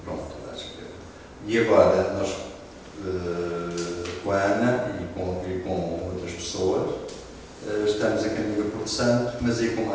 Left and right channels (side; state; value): both; identical; correlation 1.00